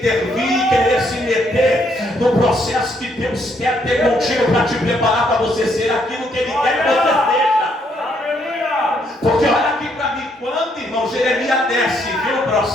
querer se meter no processo que Deus quer ter contigo para te preparar para você ser aquilo que Ele quer que você seja. Aleluia! Porque olha aqui para mim, quando, irmão, Jeremias desce e vê o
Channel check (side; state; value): both; normal; correlation 0.72